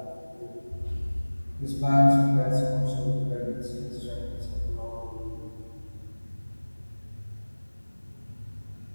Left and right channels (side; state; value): both; inverted; correlation -1.00